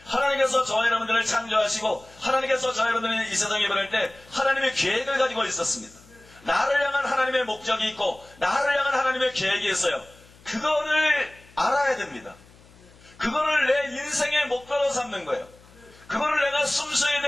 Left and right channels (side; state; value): left; noise; hum, 26 dB below the sound